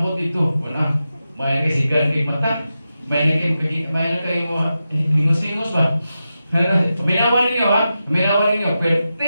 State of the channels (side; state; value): both; inverted; correlation -0.90